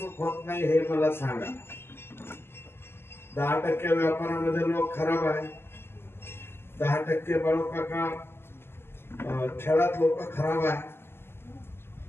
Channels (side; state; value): right; late; 0.12 ms